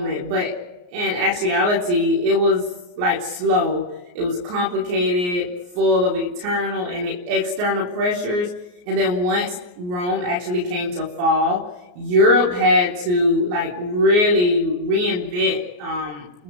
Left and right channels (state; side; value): late; left; 34 ms